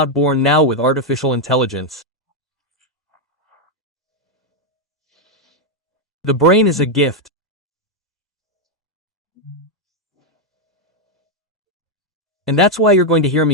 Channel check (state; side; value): normal; both; correlation 0.02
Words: born now with artificial intelligence. The brain is a gift. And that's why you're going to hear